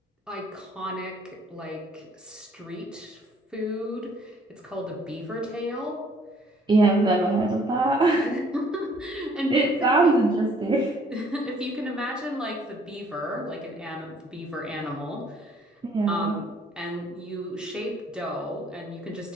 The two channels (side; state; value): both; normal; correlation 0.61